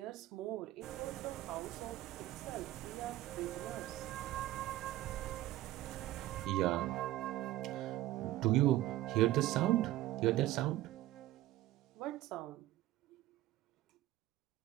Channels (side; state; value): left; quieter; 15.4 dB